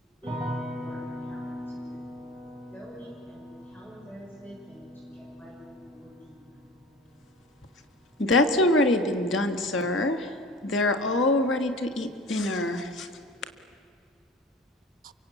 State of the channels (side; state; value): both; normal; correlation 0.39